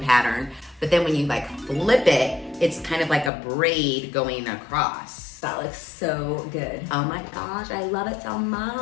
but then when you like flip it, it's kind of like a braid going across. That looks so good. Oh my gosh, I love it so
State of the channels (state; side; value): drops out; right; at 3.3 s